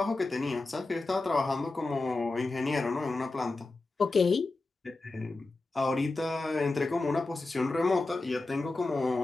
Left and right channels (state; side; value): quieter; right; 3.3 dB